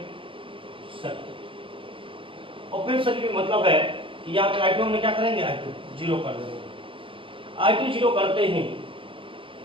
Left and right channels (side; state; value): left; late; 0.25 ms